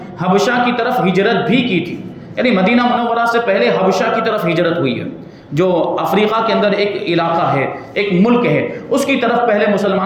حبشہ کی طرف ہجرت بھی کی تھی، یعنی مدینہ منورہ سے پہلے حبشہ کی طرف ہجرت ہوئی ہے، جو افریقہ کے اندر ایک علاقہ ہے، ایک ملک ہے، اس کی طرف پہلے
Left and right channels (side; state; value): both; identical; correlation 1.00